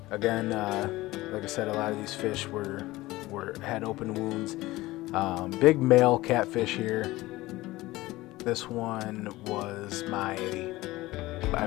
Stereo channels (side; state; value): right; quieter; 18.7 dB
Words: Again, like I said, a lot of these fish had open wounds. Big male catfish here. This one was I